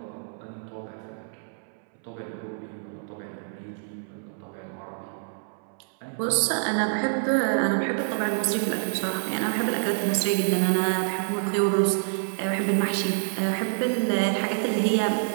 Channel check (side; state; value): left; silent; 60 dB below the other